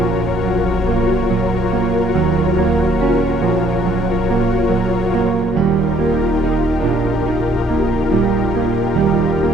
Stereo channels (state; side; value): normal; both; correlation 0.65